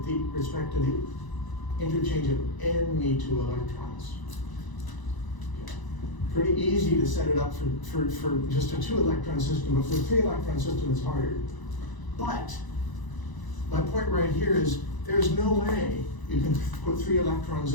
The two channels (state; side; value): late; right; 1.0 ms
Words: respect to the interchange of any 2 electrons. Pretty easy to set it up for just a 2 electron system, but for a 3 electron system it's harder. But my point right here is there's no way you can put 3